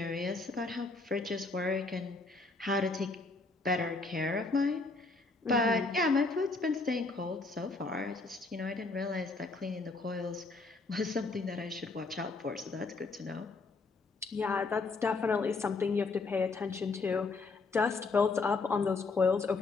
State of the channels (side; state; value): right; quieter; 3.8 dB